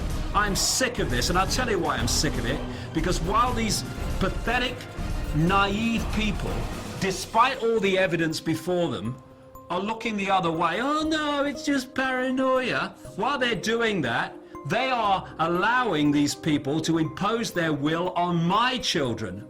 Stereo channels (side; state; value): both; identical; correlation 1.00